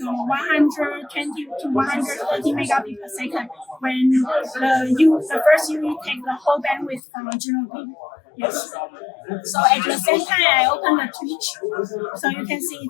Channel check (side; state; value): right; drops out; at 7.0 s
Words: to 130 megabits per second when the first UE takes the whole bandwidth from the gNodeB. Yes. So at the same time, I open the Twitch, so you can see